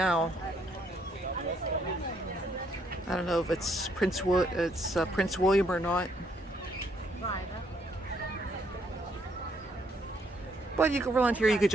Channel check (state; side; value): normal; both; correlation 0.71